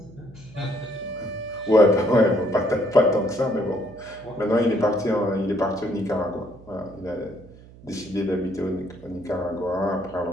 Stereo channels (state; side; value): noise; right; hum, 21 dB below the sound